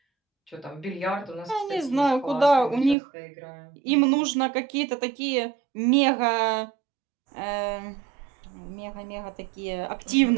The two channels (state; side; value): drops out; left; at 3.0 s